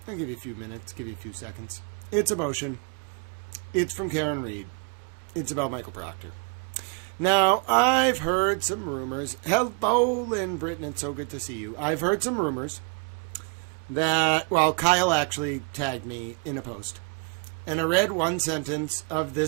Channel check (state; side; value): quieter; left; 37.1 dB